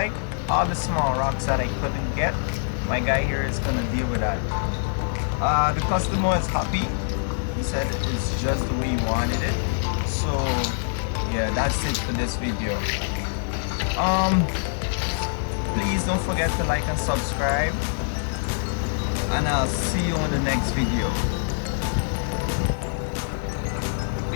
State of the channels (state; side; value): silent; right; digital silence